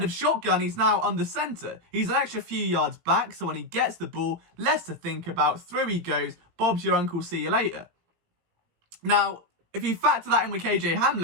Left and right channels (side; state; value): left; late; 18 ms